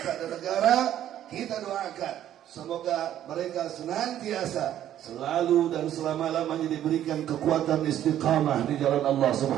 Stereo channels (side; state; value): left; quieter; 11.5 dB